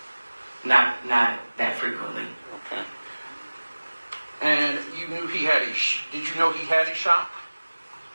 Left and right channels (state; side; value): inverted; both; correlation -1.00